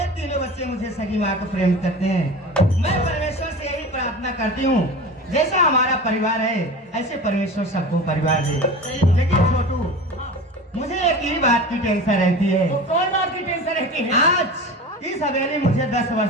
तीनों बच्चे मुझे सगी माँ को प्रेम करते हैं। मैं परमेश्वर से यही प्रार्थना करती हूँ, जैसा हमारा परिवार है ऐसे परमेश्वर सबको परिवार दे। लेकिन छोटू मुझे एक ही बात की टेंशन रहती है। तो कौन बात की टेंशन रहती है? आज इस हवेली मुझे 10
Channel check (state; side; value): normal; both; correlation 0.33